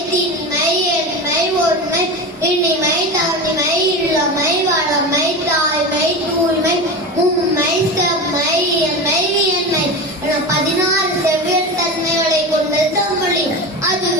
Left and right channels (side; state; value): both; normal; correlation 0.25